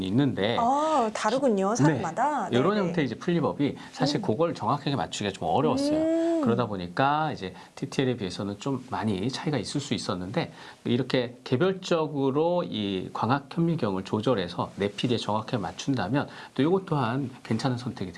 있는데 다르군요, 사람마다. 네, 이런 네네. 형태의 이제 풀리법이 사실 그걸 정확하게 맞추기가 좀 어려웠어요. 그러다 보니까 이제 TTL에 비해서는 좀 많이 차이가 있을 수 있었는데 이렇게 개별적으로 이 광학 현미경을 조절해서 내 피디에 정확하게 맞춘다면 또 이것 또한 괜찮은 선택이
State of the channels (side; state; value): both; identical; correlation 1.00